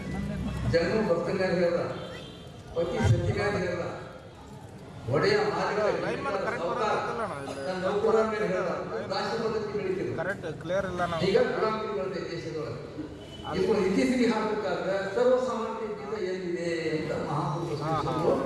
ಜನ್ಮ ಭಕ್ತ ಮೇಲೆ ಹೇಳಲ್ಲ, ಪತಿ ಸತಿ ಮೇಲೆ ಹೇಳಲ್ಲ, ಒಡೆಯ ಮಾಲಿಕ ತನ್ನ ನೌಕರ ಮೇಲೆ ಹೇಳಲ್ಲ. ದಾಸ್ಯ ಪದ್ಧತಿ ಬೆಳಿತೀವಿ. ಈಗ ಗುಲಾಮಿ ಬರುತ್ತೆ ದೇಶದೊಳಗೆ. ಈಗ ಇತ್ತೀಚೆಗೆ ಹಾಕಬೇಕಾದ್ರೆ ಸರ್ವಸಾಮಾನ್ಯ ಎಲ್ಲಿದೆ ಅಂತ ಮಹಾಪುರುಷರು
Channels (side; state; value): both; identical; correlation 1.00